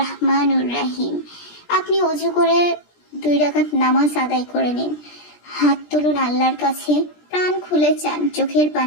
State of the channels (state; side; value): late; right; 17 ms